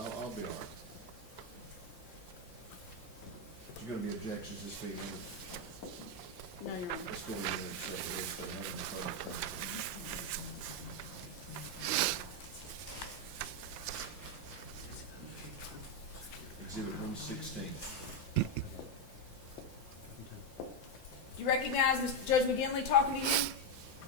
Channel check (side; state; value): right; late; 5.8 ms